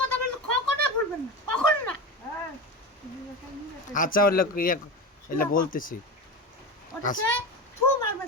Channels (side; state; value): both; normal; correlation 0.23